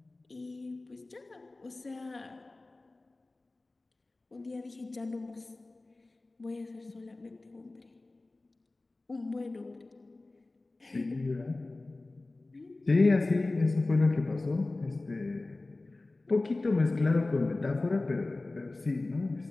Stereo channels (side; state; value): right; quieter; 3.1 dB